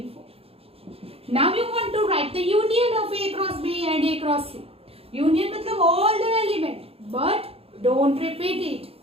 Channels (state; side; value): late; left; 0.28 ms